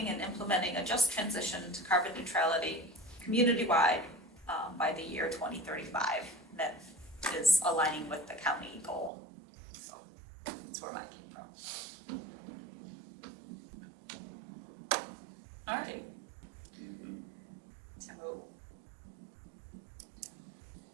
and implementing a just transition to carbon neutrality community-wide by the year 2035. That is aligning with the county goal. So that's where mine came from. All right. So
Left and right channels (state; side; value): drops out; left; at 9.1 s